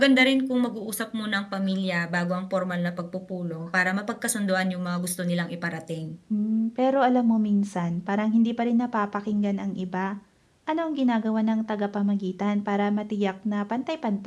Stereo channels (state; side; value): identical; both; correlation 1.00